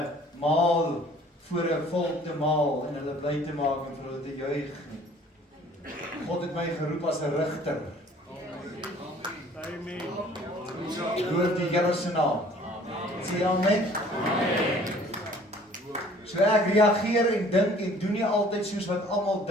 maal voor 'n volk te maal en hulle bly te maak en vir hulle te juig nie. God het my geroep as 'n rigter. Amen. Loof die Here se naam. Sê amen. So ek reageer en dink en doen nie altyd soos wat almal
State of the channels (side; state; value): both; normal; correlation 0.53